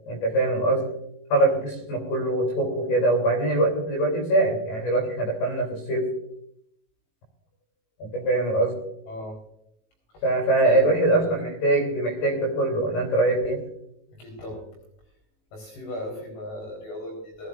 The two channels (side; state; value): right; late; 18 ms